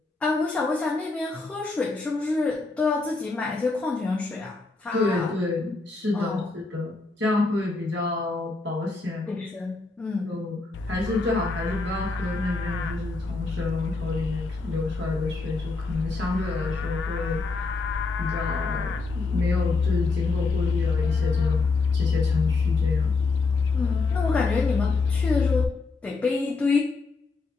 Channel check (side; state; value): right; quieter; 3.8 dB